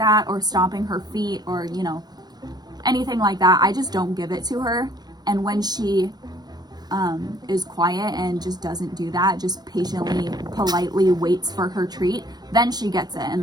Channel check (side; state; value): left; late; 0.19 ms